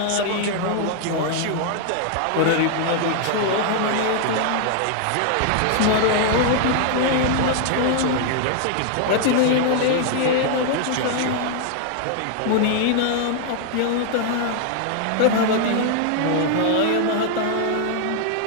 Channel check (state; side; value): different; both; correlation 0.00